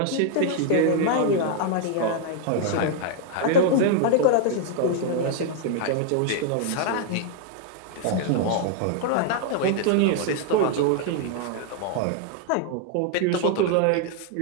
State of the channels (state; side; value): different; both; correlation 0.00